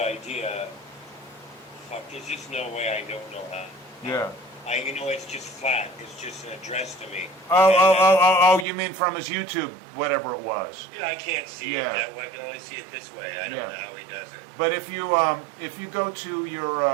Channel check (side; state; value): left; drops out; at 8.7 s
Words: Fuck, there's just no way I don't know how. Yeah. It's just flat. It's just an address to me. Oh, you mean from his YouTube, whatever it was. Yeah, I can't see Yeah. it that way. I can only see it this way. I don't know how he does it. But if you go to your,